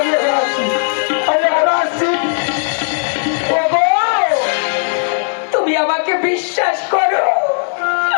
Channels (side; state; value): right; silent; 64 dB below the other